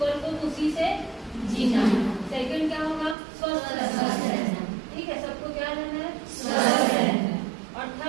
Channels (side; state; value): left; drops out; at 3.2 s